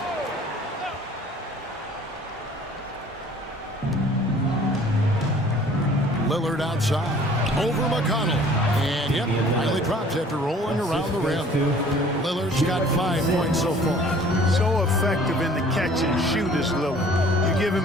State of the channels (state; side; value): normal; both; correlation 0.52